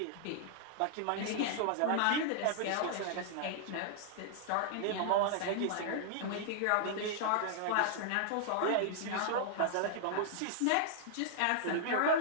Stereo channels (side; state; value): both; different; correlation -0.01